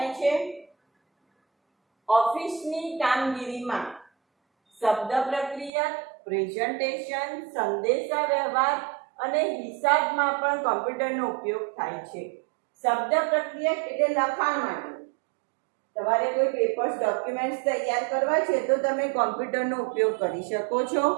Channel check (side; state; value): left; drops out; at 5.7 s